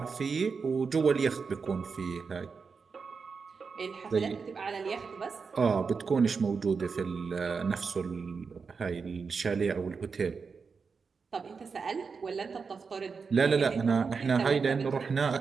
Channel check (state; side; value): quieter; left; 5.2 dB